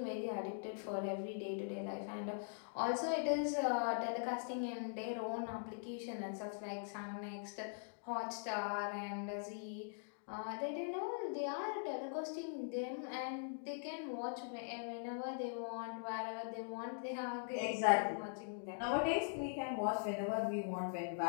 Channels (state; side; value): silent; right; digital silence